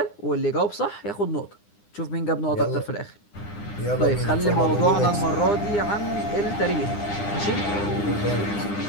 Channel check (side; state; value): right; late; 9.8 ms